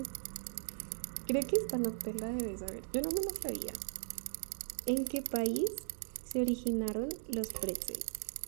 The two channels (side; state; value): left; silent; 52 dB below the other